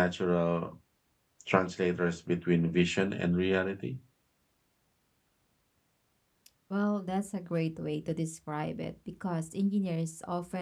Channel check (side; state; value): both; identical; correlation 1.00